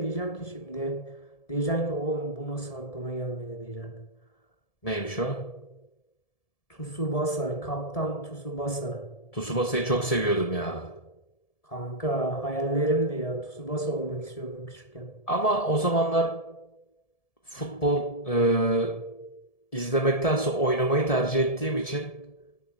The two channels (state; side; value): late; right; 1.7 ms